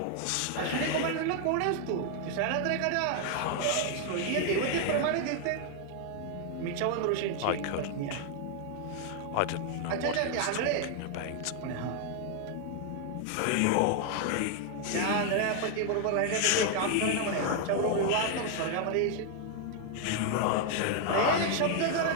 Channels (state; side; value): different; both; correlation 0.00